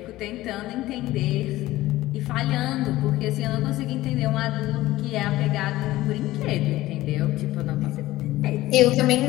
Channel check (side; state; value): right; quieter; 16.7 dB